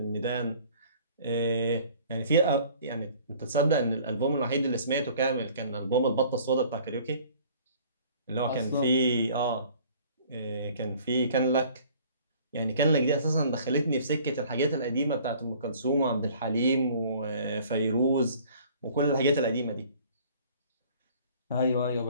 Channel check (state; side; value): inverted; both; correlation -0.52